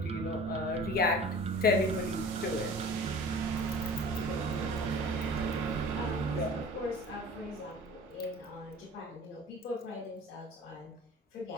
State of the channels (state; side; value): normal; both; correlation 0.42